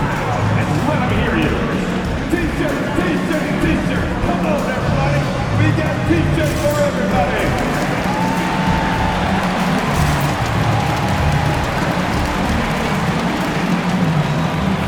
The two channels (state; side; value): identical; both; correlation 1.00